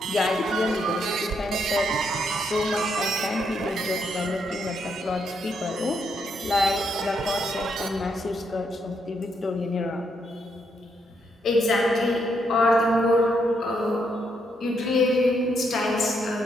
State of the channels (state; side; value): normal; both; correlation 0.77